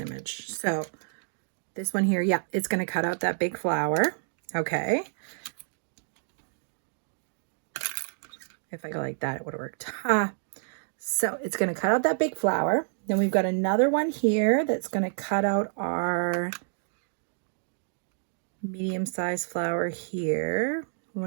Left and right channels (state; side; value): silent; left; digital silence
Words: image. So this one here, yeah, it's going to cut out that big flower. Okay. If I go like that, it would have worked. So it's going to cut out that big flower. Then we've got another one here that's going to cut out our medium-sized flower here.